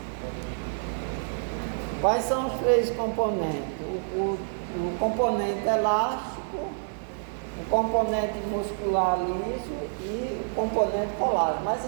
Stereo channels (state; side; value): silent; left; 60 dB below the other